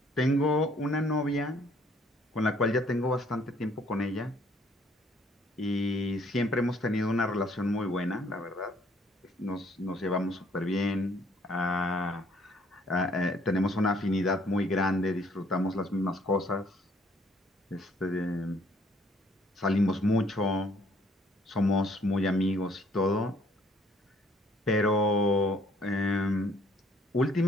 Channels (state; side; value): normal; both; correlation 0.62